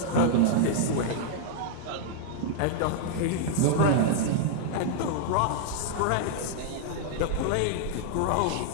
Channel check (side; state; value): both; different; correlation -0.01